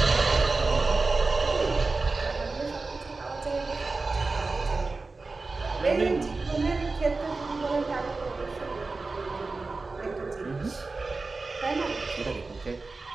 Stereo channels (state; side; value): quieter; left; 3.7 dB